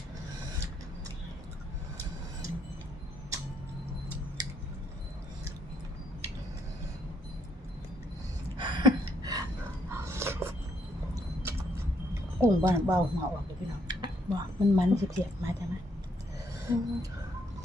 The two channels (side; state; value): both; normal; correlation 0.72